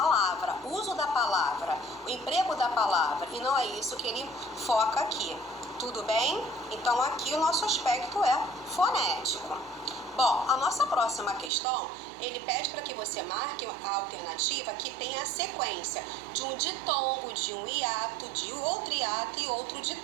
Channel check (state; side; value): drops out; left; at 11.5 s